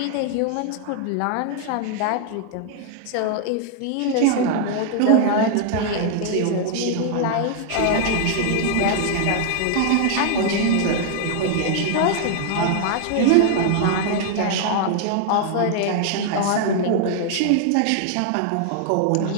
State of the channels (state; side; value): different; both; correlation 0.00